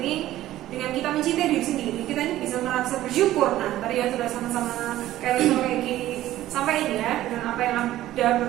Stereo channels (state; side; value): quieter; left; 14.4 dB